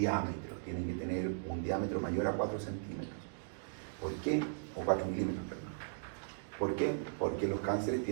tienen que tener un diámetro mayor a 4 centímetros. ¿Por qué? O 4 milímetros, perdón. ¿Por qué? Porque los cánceres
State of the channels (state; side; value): silent; left; digital silence